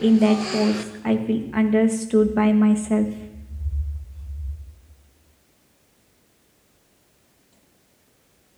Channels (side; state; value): both; identical; correlation 1.00